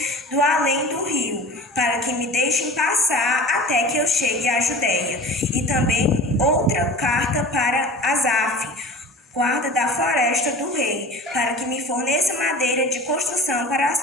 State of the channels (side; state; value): both; normal; correlation 0.39